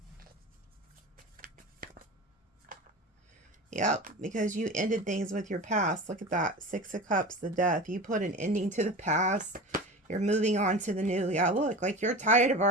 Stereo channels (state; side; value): normal; both; correlation 0.31